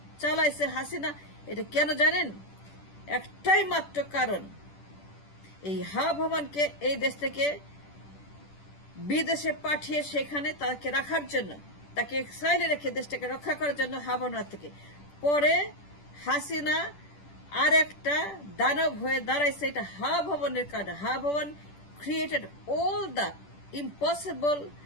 চালাইছে হাসিনা। এটা কেন জানেন? একটাই মাত্র কারণ, এই হা ভবনকে এই দেশ থেকে বিদেশে পাঠিয়ে সেখানে তাকে রাখার জন্য, তাকে এক্সাইলে রেখে দেশটাকে রক্ষা করার জন্য হা ভবন থেকে। পরে হাসিনা আর একটা দানব হয়ে দাঁড়াইছে, এটা হা ভবনের কারণে। হা ভবন created all the impossible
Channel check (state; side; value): late; right; 10 ms